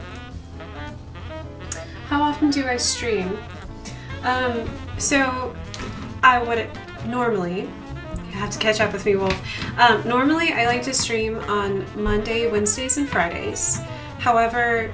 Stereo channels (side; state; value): both; identical; correlation 1.00